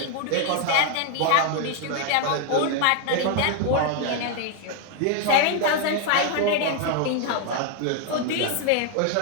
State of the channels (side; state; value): both; different; correlation 0.00